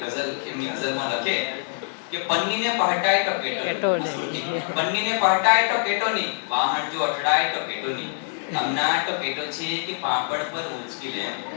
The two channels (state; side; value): silent; right; 62 dB below the other